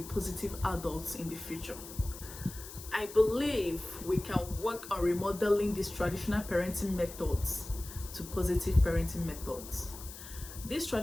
adults in the future. I believe we can work on remodeling these traditional parenting methods to positive parenting methods. These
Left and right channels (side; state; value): left; noise; hiss, 13 dB below the sound